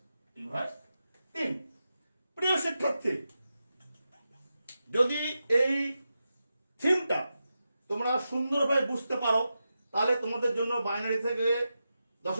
রিভার্স 3। প্রিয় শিক্ষার্থী, যদি এই থিমটা তোমরা সুন্দরভাবে বুঝতে পারো তাহলে তোমাদের জন্য বাইনারি থেকে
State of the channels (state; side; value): inverted; both; correlation -0.90